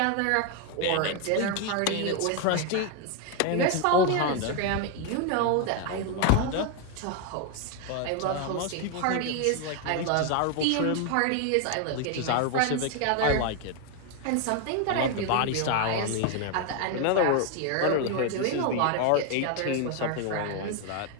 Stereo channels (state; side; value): different; both; correlation 0.01